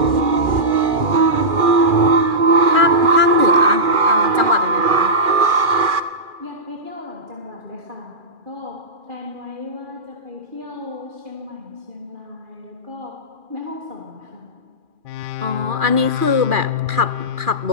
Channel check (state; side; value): late; left; 2.4 ms